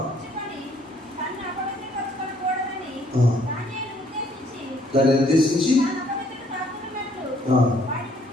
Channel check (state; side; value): normal; both; correlation 0.64